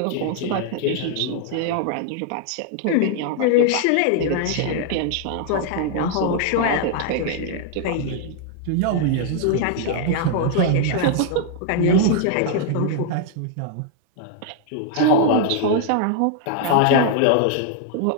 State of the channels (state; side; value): different; both; correlation 0.00